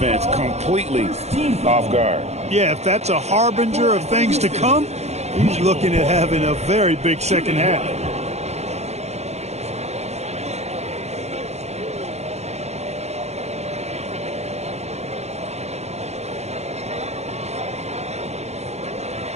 completely off guard. Yeah, if that's a harbinger of things to come, he's looking at having a very big second half.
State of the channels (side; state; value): left; late; 0.32 ms